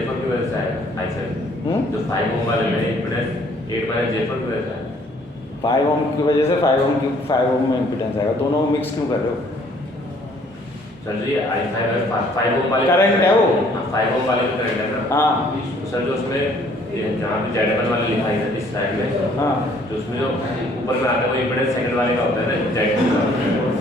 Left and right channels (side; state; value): both; normal; correlation 0.60